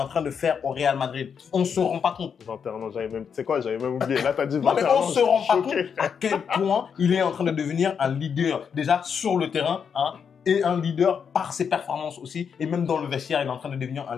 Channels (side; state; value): right; quieter; 6.9 dB